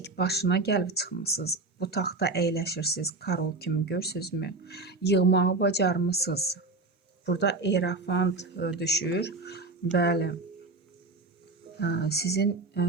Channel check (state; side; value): quieter; left; 3.4 dB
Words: başına gəlib çıxmısınız. Bu taxta əyləşirsiniz, Karol kimi görürsünüzmü? Yığmağı bacarmısınız. Burada Erafant düşür. Bəli, sizin